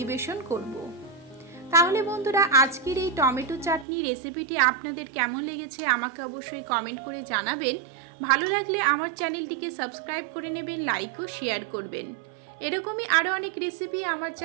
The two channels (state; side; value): drops out; left; at 3.9 s